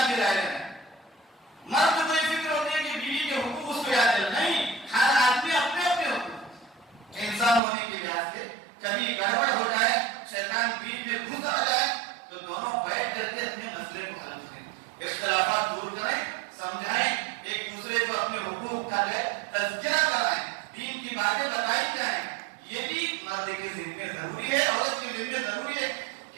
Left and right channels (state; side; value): drops out; left; at 7.6 s